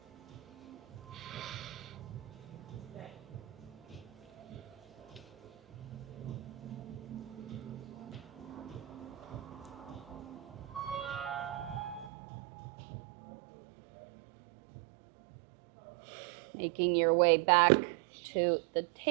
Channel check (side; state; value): left; drops out; at 12.1 s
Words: Making your way back to the